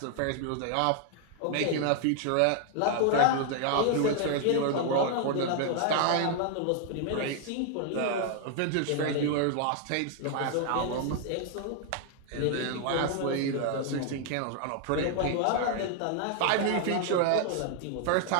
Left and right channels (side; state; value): both; different; correlation 0.00